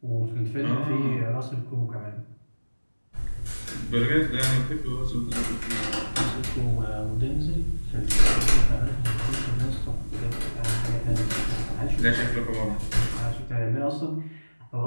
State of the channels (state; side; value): inverted; both; correlation -1.00